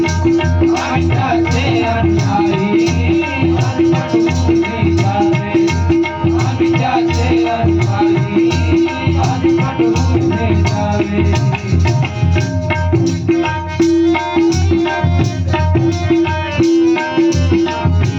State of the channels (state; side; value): identical; both; correlation 1.00